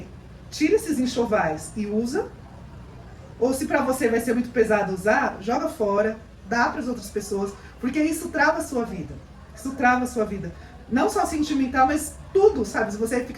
tira esses enxovais e usa, ou se pra você vai ser muito pesado usar, joga fora, dá para as outras pessoas, porque isso trava a sua vida. Isso trava a sua vida. Não só sentimental, mas tudo, sabe? Se você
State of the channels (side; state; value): both; identical; correlation 1.00